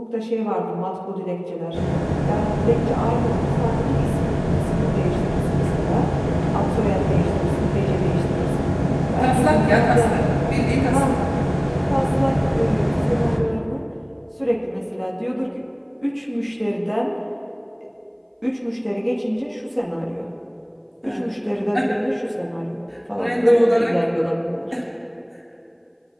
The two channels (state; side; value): identical; both; correlation 1.00